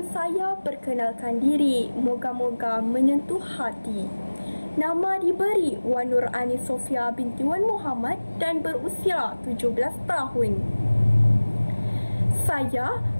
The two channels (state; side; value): inverted; both; correlation -1.00